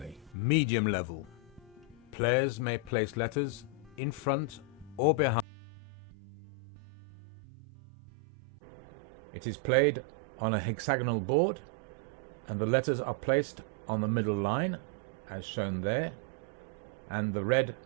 Medium level. Players may place letters in front or behind the sequence of letters. It is played on a hexagonal board, and the letters are placed on the middle line as shown there, and the red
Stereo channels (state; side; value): drops out; left; at 5.5 s